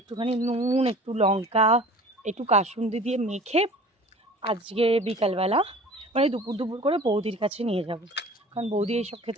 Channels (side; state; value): both; normal; correlation 0.44